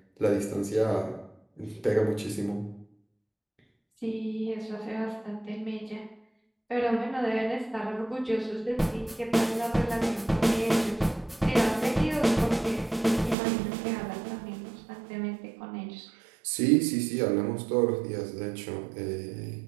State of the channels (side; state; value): left; drops out; at 13.4 s